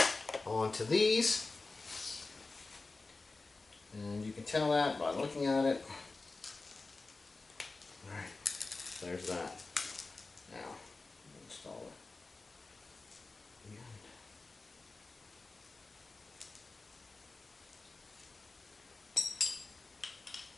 onto these. And you can tell that by looking at it. Alright, there's that. Now, install it.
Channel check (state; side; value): quieter; right; 3.6 dB